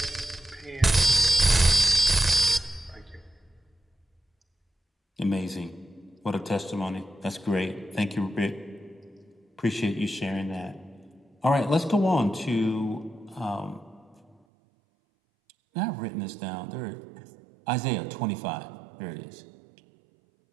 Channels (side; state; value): left; drops out; at 14.4 s